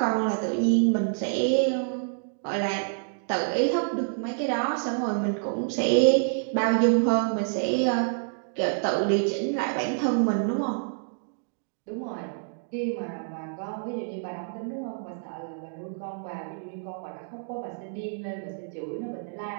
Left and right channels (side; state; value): left; silent; digital silence